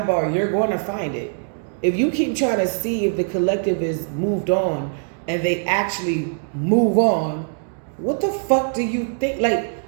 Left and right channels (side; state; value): left; silent; digital silence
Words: you're going to find it. If you keep trying to see if the collective is moved on and they actually move on, what the fuck do you think? Like,